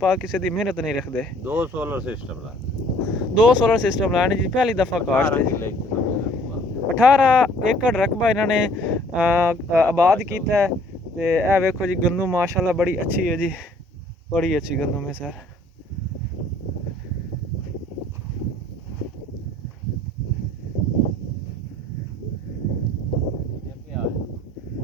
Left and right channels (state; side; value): normal; both; correlation 0.56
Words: ਪਾਕ ਕਿਸੇ ਦੀ ਮਿਹਨਤ ਨਹੀਂ ਰੱਖਦੇ। ਦੋ ਸੋਲਰ ਸਿਸਟਮ ਲਾਣੇ ਜੀ ਪਹਿਲੀ ਦਫਾ ਕਾਸ਼ਤ ਹੈ। 18 ਏਕੜ ਰਕਬਾ ਇਹਨਾਂ ਨੇ ਆਬਾਦ ਕੀਤਾ ਹੈ। ਤੇ ਇਹ ਵੇਖੋ ਜੀ ਗੰਦਮ ਮਾਸ਼ਾਅੱਲਾ ਬੜੀ ਅੱਛੀ ਹੈ ਜੀ, ਬੜੀ ਅੱਛੀ ਗੰਦਮ ਹੈ ਸਰ।